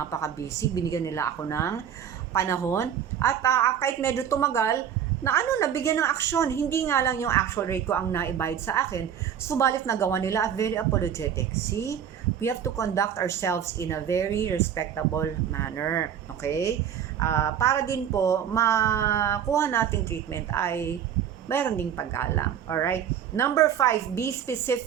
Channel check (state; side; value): quieter; left; 9.0 dB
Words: binigyan nila ako ng panahon. At kahit medyo tumagal, nabigyan ng aksyon. Hindi nga lang yung actual rate ko ang naibayad sa akin, subalit nagawa nila at very apologetic. See, we have to conduct ourselves in a very respectable manner. Okay? Para din po, makuha nating treatment ay mayroon ding paggalang. Alright? Number 5, be